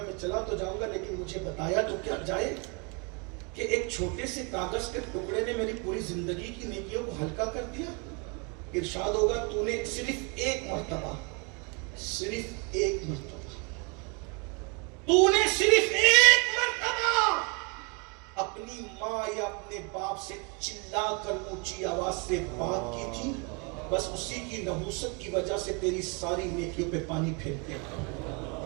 میں چلا تو جاؤں گا، لیکن مجھے بتایا تو کیا جائے کہ ایک چھوٹے سے کاغذ کے ٹکڑے نے میری پوری زندگی کی نیکیوں کو ہلکا کر دیا۔ ارشاد ہوگا تو نے صرف ایک مرتبہ اپنی ماں یا اپنے باپ سے چلا کر اونچی آواز سے بات کی تھی، بس اسی کی نحوست کی وجہ سے تیری ساری نیکیوں پہ پانی پھیرتے ہیں۔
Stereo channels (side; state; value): left; quieter; 32.1 dB